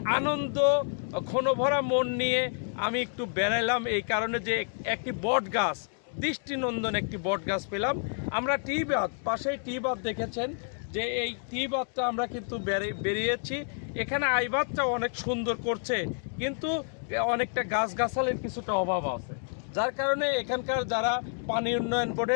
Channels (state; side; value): silent; right; 58 dB below the other